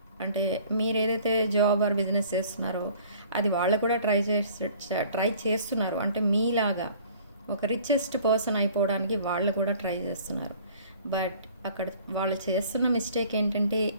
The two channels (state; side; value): inverted; both; correlation -0.52